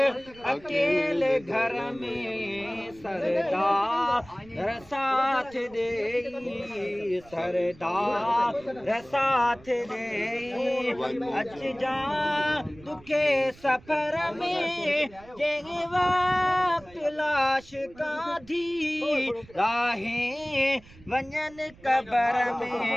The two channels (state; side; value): noise; right; rumble, 23 dB below the sound